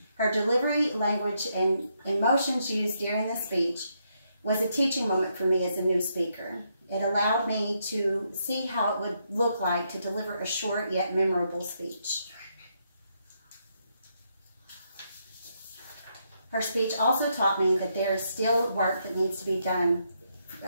Her delivery, language, and emotions used during the speech was a teaching moment for me as a new speaker. It allowed me to see how it would look like to deliver a short yet memorable speech. Her speech also taught me that there is still work that needs to be done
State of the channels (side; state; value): both; inverted; correlation -0.78